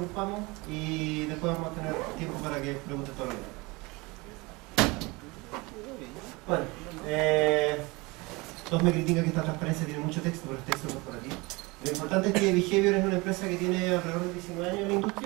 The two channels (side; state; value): left; quieter; 24.8 dB